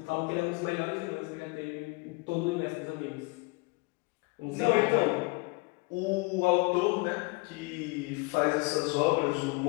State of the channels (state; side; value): quieter; right; 27.8 dB